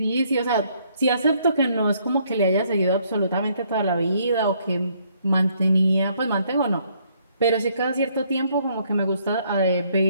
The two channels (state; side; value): inverted; both; correlation -0.68